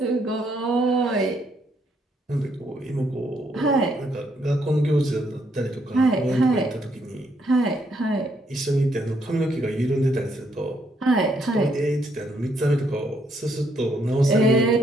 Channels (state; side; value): normal; both; correlation 0.73